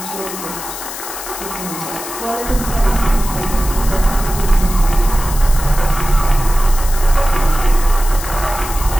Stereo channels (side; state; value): left; noise; hiss, 9 dB below the sound